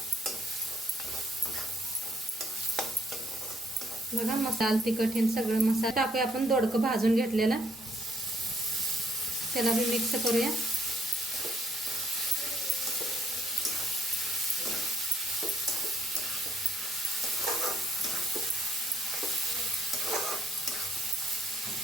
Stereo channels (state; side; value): normal; both; correlation 0.68